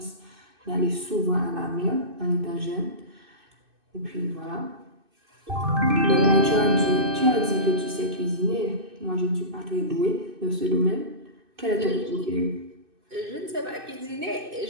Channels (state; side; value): late; left; 2.6 ms